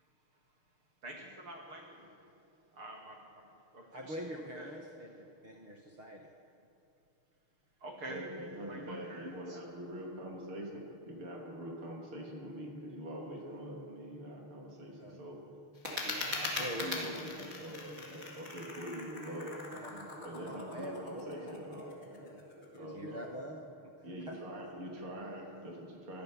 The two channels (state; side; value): late; left; 6.6 ms